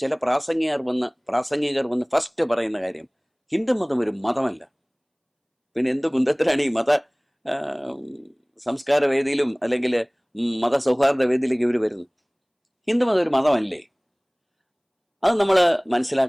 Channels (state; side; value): identical; both; correlation 1.00